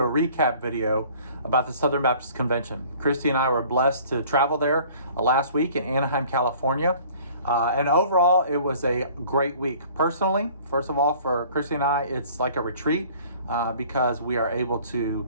a recap video about the Southern Baptist Convention. Christy and I were blessed to travel there last week in Anaheim, California. And overall, it was a great week. Personally, first of all, for Christy and I, it's like a retreat because we are able to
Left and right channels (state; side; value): inverted; both; correlation -0.52